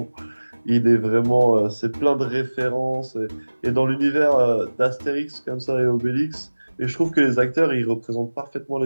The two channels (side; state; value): both; inverted; correlation -1.00